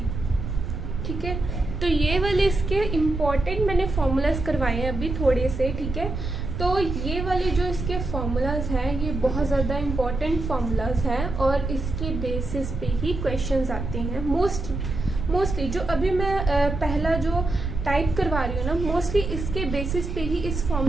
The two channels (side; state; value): right; noise; rumble, 5 dB below the sound